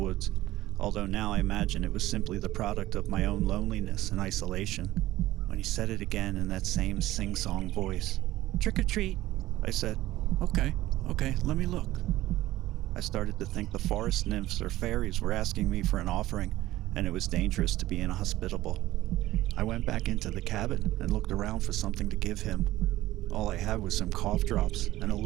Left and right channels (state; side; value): quieter; left; 16.0 dB